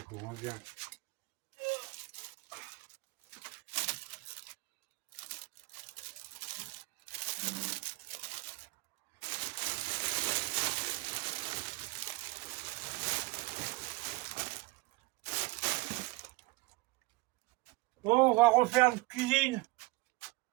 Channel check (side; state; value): left; quieter; 23.1 dB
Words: chaud, hein, bien. Bon, on va refaire une cuisine.